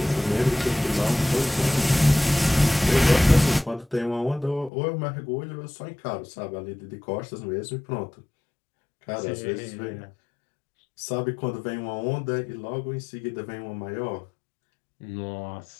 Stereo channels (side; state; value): right; drops out; at 4.7 s